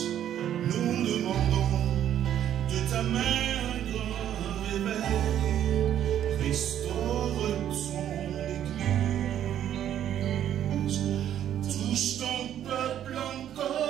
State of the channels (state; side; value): quieter; left; 10.7 dB